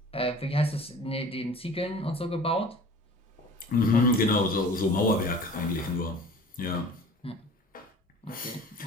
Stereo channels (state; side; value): normal; both; correlation 0.43